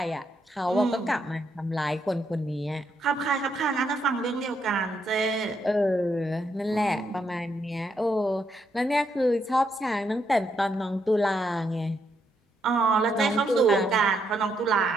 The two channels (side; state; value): both; normal; correlation 0.77